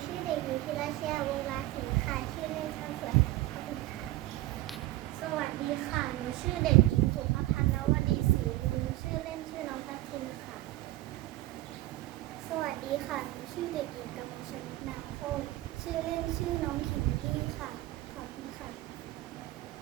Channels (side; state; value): left; quieter; 17.0 dB